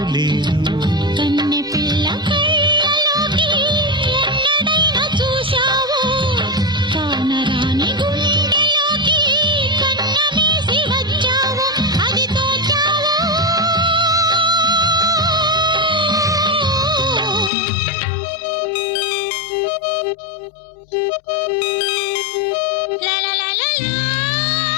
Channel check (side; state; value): right; drops out; at 17.5 s